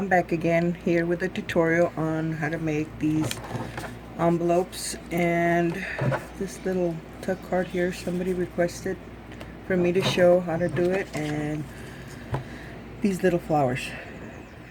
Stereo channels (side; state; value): both; identical; correlation 1.00